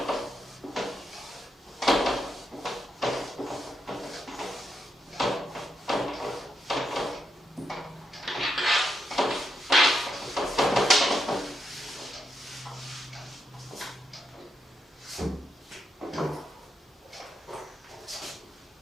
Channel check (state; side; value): normal; both; correlation 0.82